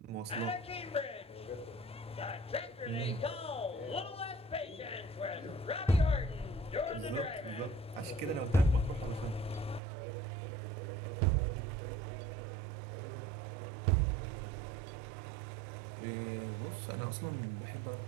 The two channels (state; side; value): drops out; left; at 9.8 s